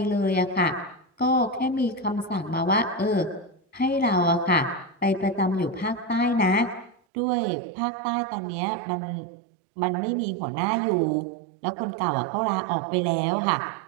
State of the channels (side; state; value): left; drops out; at 7.0 s